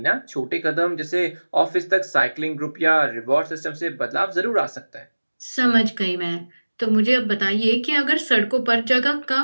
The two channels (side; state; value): both; inverted; correlation -1.00